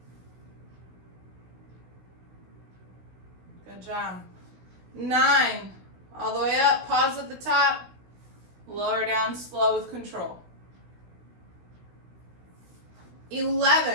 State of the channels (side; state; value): left; late; 16 ms